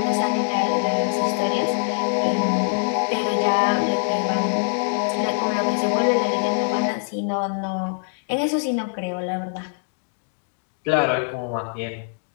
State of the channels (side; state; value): right; silent; 63 dB below the other